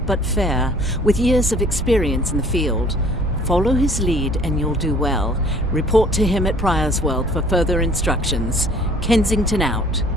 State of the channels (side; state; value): both; normal; correlation 0.54